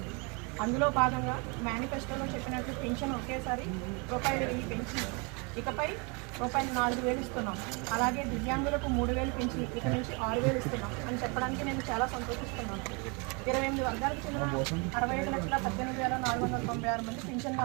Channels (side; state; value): left; quieter; 31.7 dB